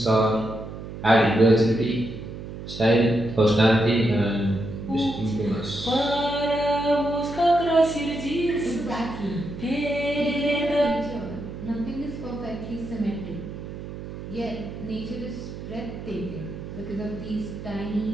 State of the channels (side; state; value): right; noise; hum, 10 dB below the sound